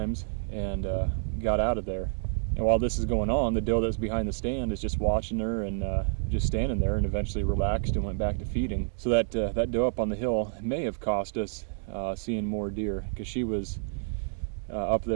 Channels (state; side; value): silent; left; digital silence